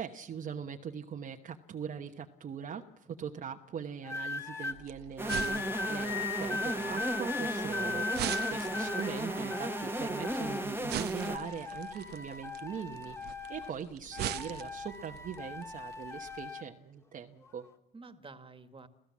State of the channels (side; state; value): both; normal; correlation 0.55